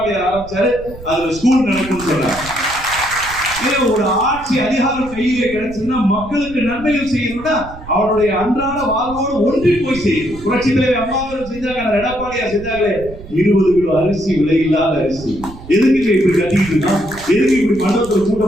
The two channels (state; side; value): noise; right; rumble, 15 dB below the sound